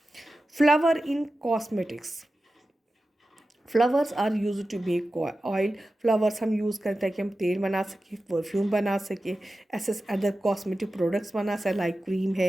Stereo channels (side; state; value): both; normal; correlation 0.94